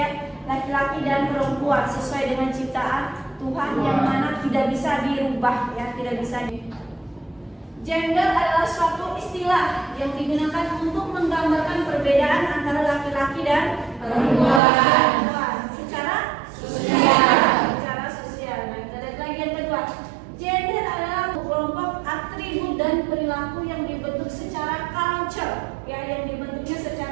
laki-laki dan perempuan sesuai dengan ciptaan Tuhan yang mana tidak bisa dirubah ya, tidak bisa Gender adalah suatu istilah yang digunakan untuk menggambarkan perbedaan antara laki-laki dan perempuan secara sosial. Nah, kita lihat lagi yang kedua. Gender adalah kelompok atribut dan perilaku yang dibentuk secara culture, ya, yang dibentuknya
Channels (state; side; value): drops out; left; at 14.6 s